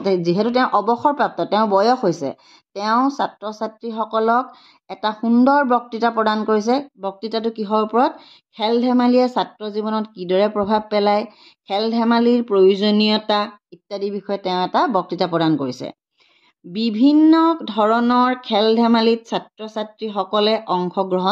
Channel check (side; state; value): both; identical; correlation 1.00